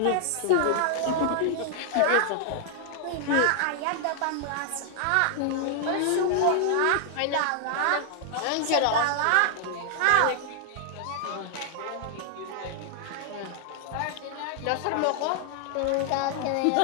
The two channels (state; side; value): different; both; correlation 0.00